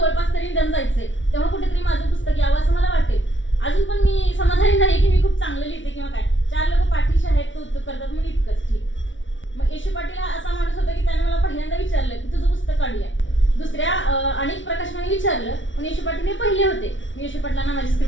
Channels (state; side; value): late; right; 0.56 ms